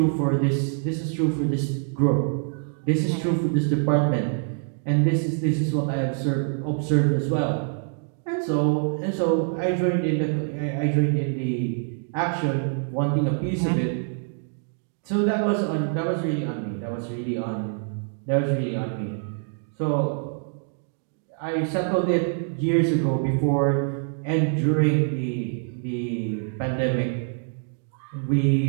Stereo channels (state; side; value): silent; left; 56 dB below the other